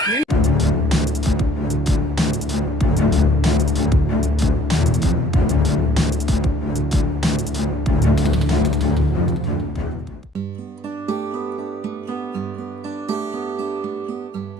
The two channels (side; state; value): both; normal; correlation 0.60